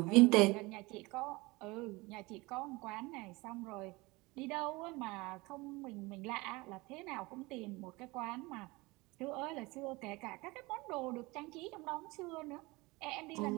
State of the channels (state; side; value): quieter; left; 23.2 dB